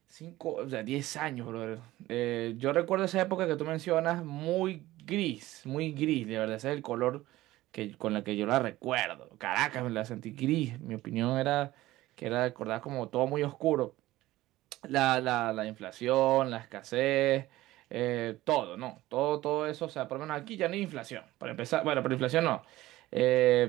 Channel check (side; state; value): left; quieter; 16.8 dB